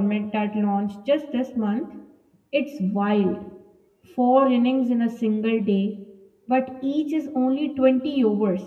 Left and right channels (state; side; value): identical; both; correlation 1.00